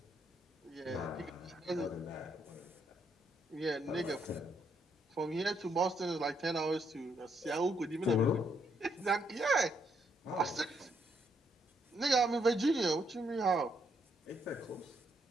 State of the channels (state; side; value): normal; both; correlation 0.74